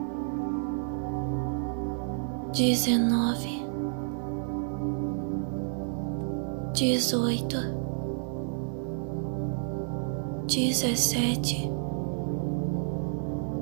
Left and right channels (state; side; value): silent; left; 58 dB below the other